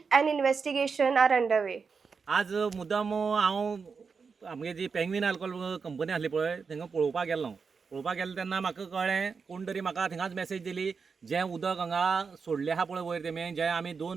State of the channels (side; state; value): left; quieter; 5.3 dB